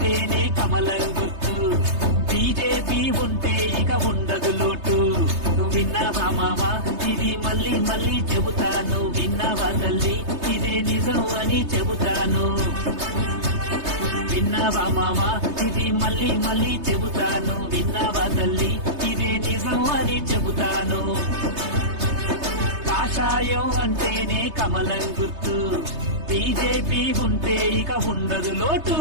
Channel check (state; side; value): late; left; 3.3 ms